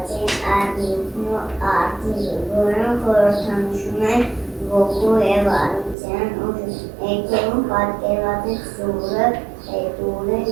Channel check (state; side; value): drops out; left; at 6.0 s